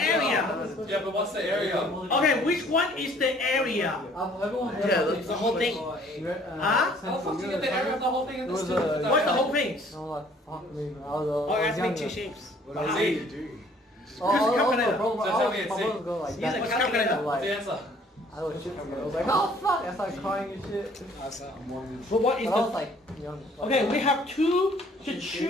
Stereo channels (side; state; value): both; normal; correlation 0.58